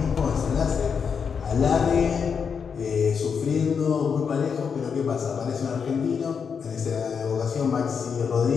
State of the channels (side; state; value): right; quieter; 6.4 dB